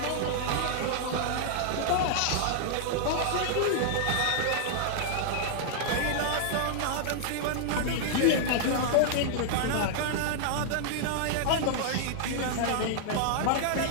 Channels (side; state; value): both; different; correlation -0.01